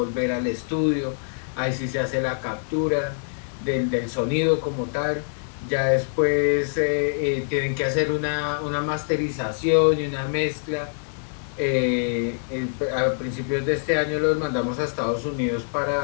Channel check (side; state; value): right; silent; 62 dB below the other